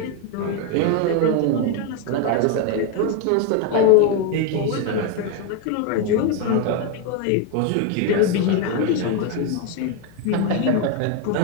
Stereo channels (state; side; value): different; both; correlation 0.02